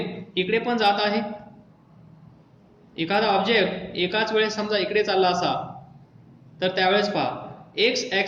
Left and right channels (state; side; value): identical; both; correlation 1.00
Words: इकडे पण जात आहे, एखादा ऑब्जेक्ट एकाच वेळेस समजा इकडे चालला असा तर त्यावेळेस पहा एक्स